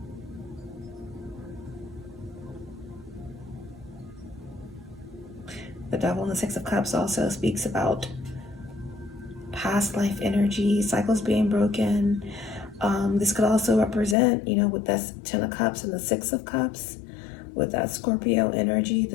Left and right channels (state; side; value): drops out; right; at 14.2 s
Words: The Devil in the Six of Cups also speaks about past life energy, cycles being broken. This could also represent, with that Ten of Cups and the Six of Cups, with that Scorpio energy.